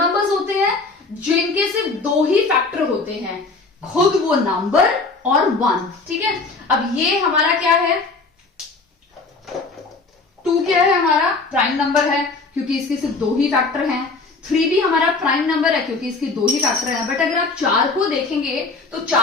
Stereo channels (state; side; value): quieter; right; 3.9 dB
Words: होते हैं जिनके सिर्फ दो ही फैक्टर होते हैं, खुद वो नंबर और 1। ठीक है, अब ये हमारा क्या है? 2 क्या है? हमारा प्राइम नंबर है क्योंकि इसके सिर्फ दो ही फैक्टर हैं। 3 भी हमारा प्राइम नंबर है क्योंकि इसके दो ही फैक्टर हैं। बट अगर आप 4 को देखेंगे तो